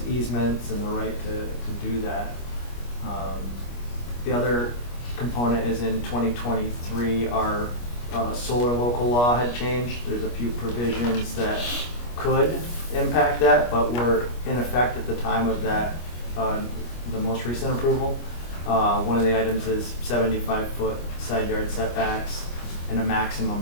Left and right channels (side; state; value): right; late; 25 ms